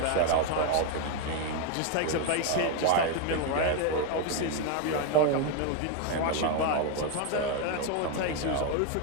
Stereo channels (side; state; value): both; different; correlation 0.01